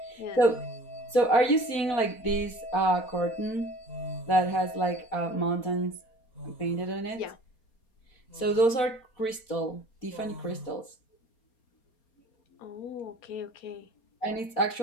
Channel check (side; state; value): right; late; 4.0 ms